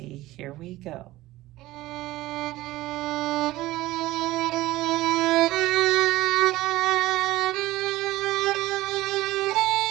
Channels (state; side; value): quieter; left; 17.2 dB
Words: Here we go.